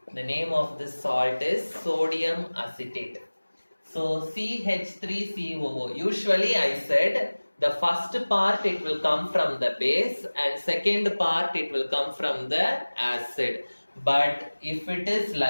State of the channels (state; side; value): inverted; both; correlation -1.00